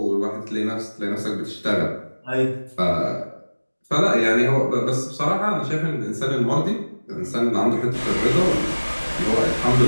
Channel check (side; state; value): both; inverted; correlation -1.00